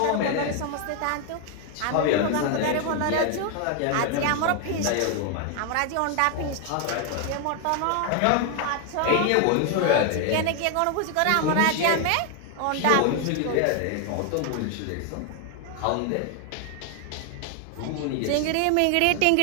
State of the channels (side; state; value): both; different; correlation 0.01